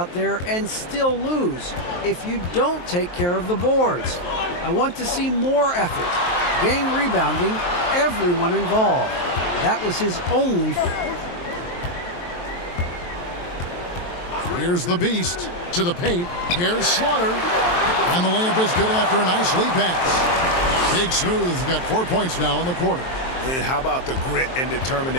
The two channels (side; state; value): right; late; 23 ms